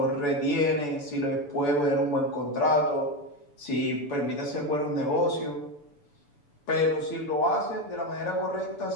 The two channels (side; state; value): right; late; 7.0 ms